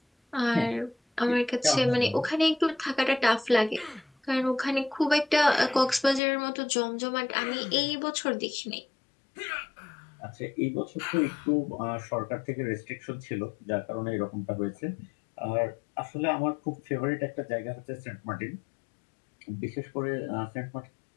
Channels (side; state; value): right; drops out; at 6.2 s